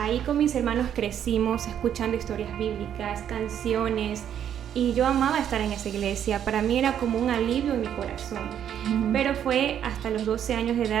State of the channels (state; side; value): quieter; left; 9.6 dB